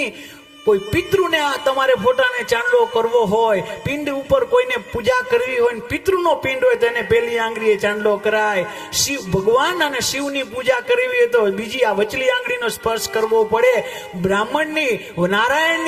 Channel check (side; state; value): both; identical; correlation 1.00